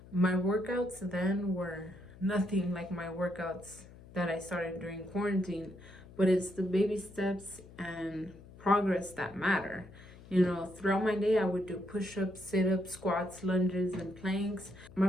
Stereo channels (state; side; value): noise; left; hum, 20 dB below the sound